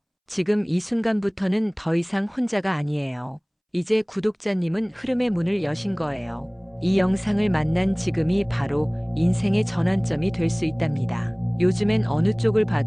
지금 이 순간부터는 더 이상 혼자가 아니에요. 이제 구독자님은 흐름의 문을 여신 거예요. 이 영상을 만난 지금이 바로 인생의 전환점이 될 수 있답니다. 요즘엔 어느 쪽을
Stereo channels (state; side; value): identical; both; correlation 1.00